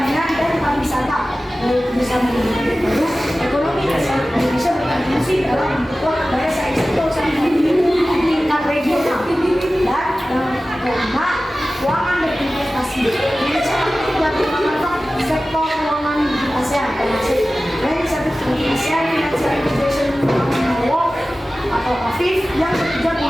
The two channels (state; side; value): normal; both; correlation 0.96